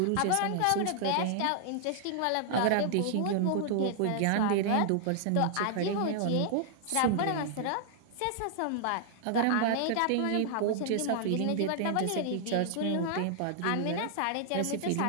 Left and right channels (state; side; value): different; both; correlation -0.01